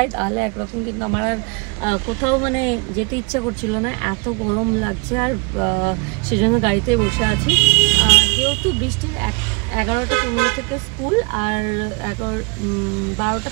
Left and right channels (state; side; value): quieter; left; 30.7 dB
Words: তাহলে একরকম, কিন্তু আমার আর কোথাও মানে যেতে ইচ্ছে করছিল না, এত গরম লাগছে। আর সেজন্য গাড়িতে বসে আছি। যেহেতু বৃষ্টির 11:15 থেকে স্কুল, আর